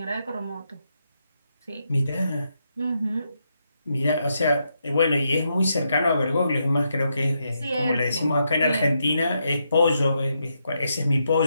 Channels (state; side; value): inverted; both; correlation -0.81